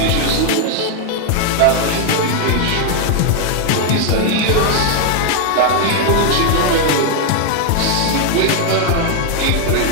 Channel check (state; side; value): different; both; correlation 0.00